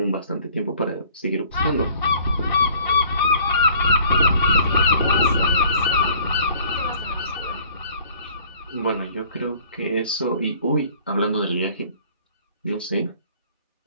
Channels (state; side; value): inverted; both; correlation -0.54